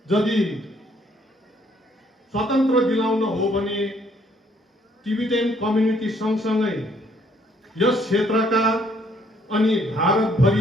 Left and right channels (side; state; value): both; normal; correlation 0.65